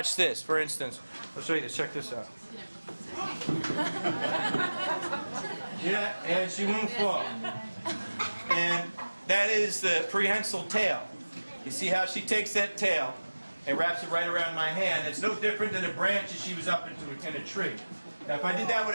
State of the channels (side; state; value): both; inverted; correlation -1.00